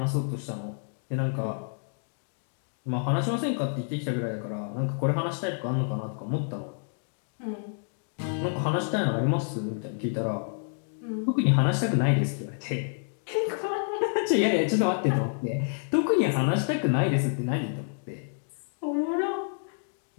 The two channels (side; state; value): right; silent; digital silence